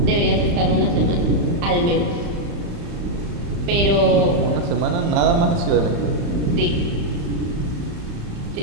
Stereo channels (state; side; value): late; left; 35 ms